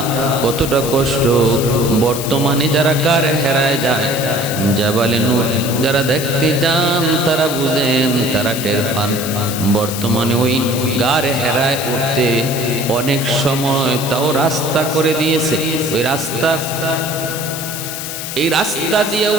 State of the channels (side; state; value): left; noise; hiss, 7 dB below the sound